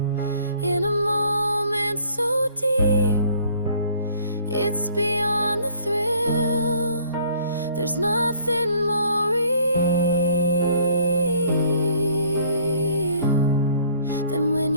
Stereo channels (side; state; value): both; inverted; correlation -0.58